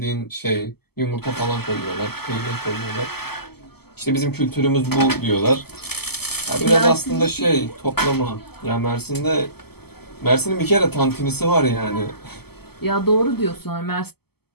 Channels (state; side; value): late; right; 0.96 ms